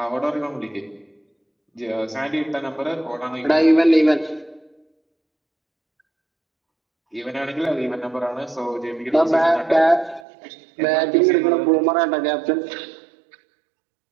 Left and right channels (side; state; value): left; drops out; at 10.2 s